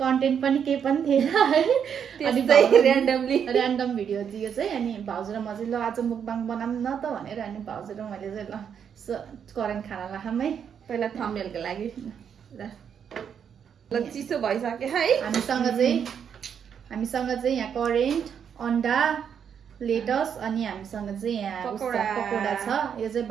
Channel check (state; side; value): quieter; left; 7.8 dB